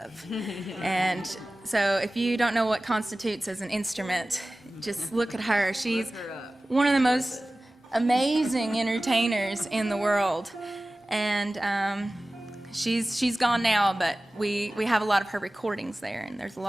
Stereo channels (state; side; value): normal; both; correlation 0.97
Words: And so if you don't know what constitutes as an instrument, just look at her. She's one of the most amazing entertainers in the world. And she's gone now, but we have a lot of her recordings there, and there's a